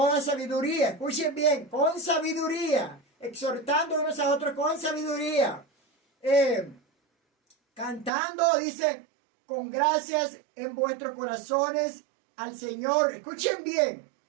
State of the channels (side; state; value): left; drops out; at 8.1 s